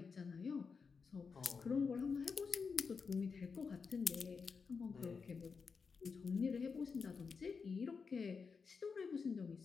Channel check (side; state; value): right; quieter; 5.3 dB